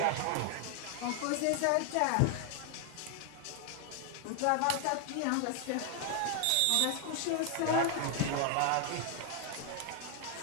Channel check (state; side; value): different; both; correlation 0.00